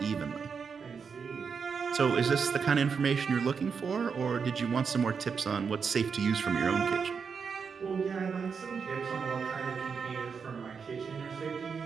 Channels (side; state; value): left; quieter; 5.9 dB